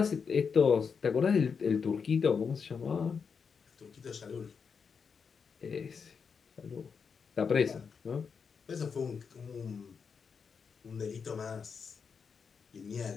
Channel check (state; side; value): quieter; right; 5.9 dB